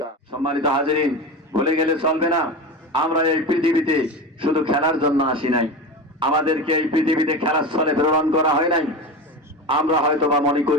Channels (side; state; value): both; normal; correlation 0.25